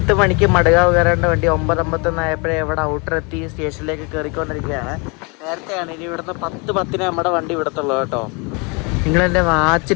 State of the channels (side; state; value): right; quieter; 30.8 dB